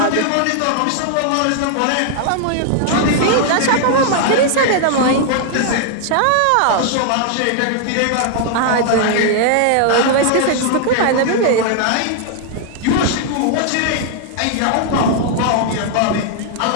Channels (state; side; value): different; both; correlation 0.00